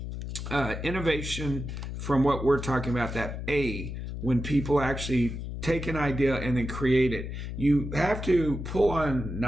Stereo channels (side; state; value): left; noise; hum, 6 dB below the sound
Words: innovation, from what we're talking about, that when people actually take an idea and then create it, you have to pull on